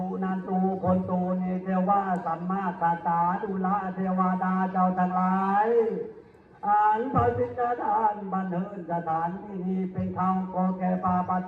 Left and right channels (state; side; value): identical; both; correlation 1.00